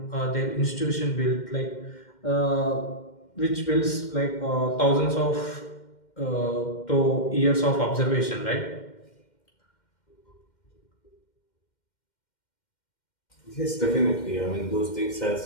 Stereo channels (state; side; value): late; right; 2.1 ms